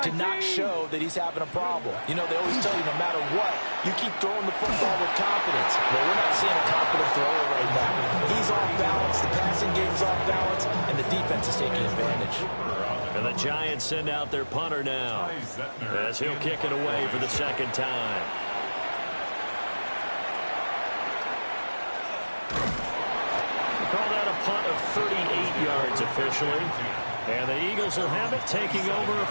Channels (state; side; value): inverted; both; correlation -1.00